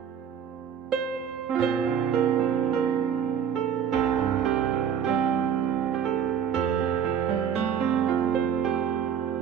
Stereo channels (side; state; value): left; quieter; 8.2 dB